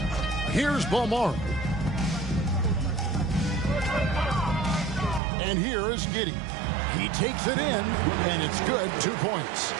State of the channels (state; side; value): drops out; left; at 5.2 s